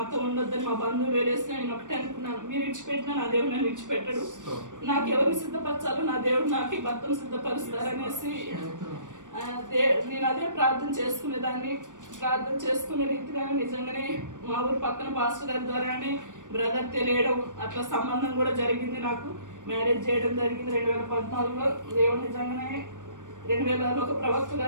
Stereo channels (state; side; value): late; left; 0.87 ms